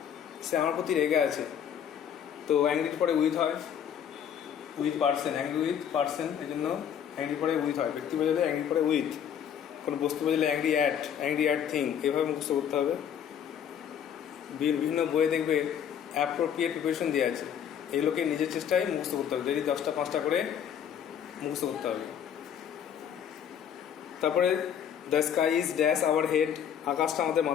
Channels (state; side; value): quieter; right; 8.7 dB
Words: সে আমার প্রতি রেগে আছে তো অ্যাংরির পরে উইথ হয় with person angry with person এই জন্য অ্যাংরি পরে উইথ হয় ব্যক্তি বোঝালে অ্যাংরি পরে উইথ কোনো বস্তু বোঝালে অ্যাংরি অ্যাট থিং এভাবে মুখস্থ করতে হবে বিভিন্ন বইয়ে দেখবে অ্যাপ্রোপ্রিয়েট প্রিপারেশন দেওয়া আছে এগুলোকে নিজের চেষ্টায় মুখস্থ করতে হবে ডেলি 10টা 5টা করে মুখস্থ করতে হবে তারপরে the sky is dash our head আকাশটা আমাদের